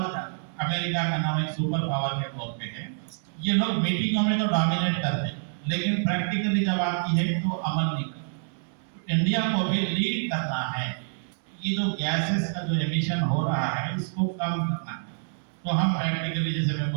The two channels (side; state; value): left; silent; digital silence